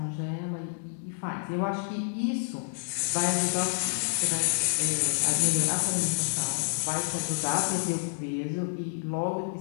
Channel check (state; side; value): silent; right; digital silence